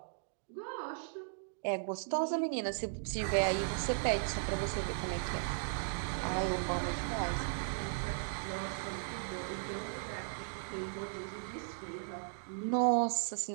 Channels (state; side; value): silent; left; digital silence